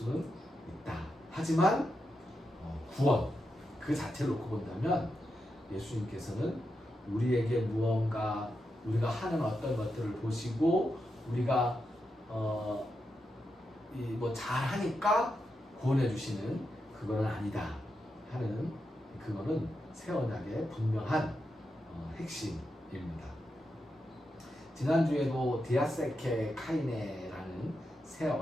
있다. 하지만 구원 그 자체를 놓고 본다면 예수님께서는 우리에게 무언가 우리가 하는 어떤 것들을 보시고 우리가 뭐 잘하니까 구원해 주시는 그거는 아니다 하는 그거는 새 언약의 분명한 핵심입니다. 지난주에도 디아세케 카이네라는 새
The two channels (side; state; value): both; normal; correlation 0.86